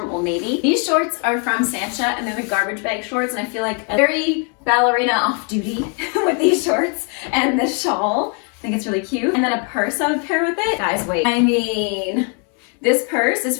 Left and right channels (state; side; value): quieter; right; 38.8 dB